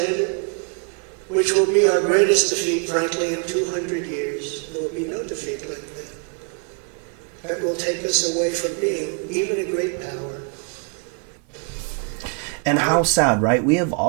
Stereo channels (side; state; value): left; quieter; 37.5 dB